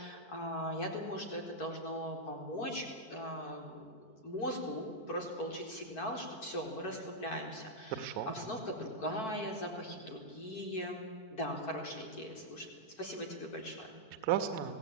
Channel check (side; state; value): right; late; 4.5 ms